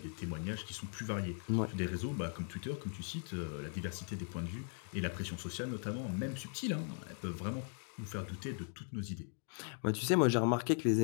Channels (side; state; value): right; silent; 52 dB below the other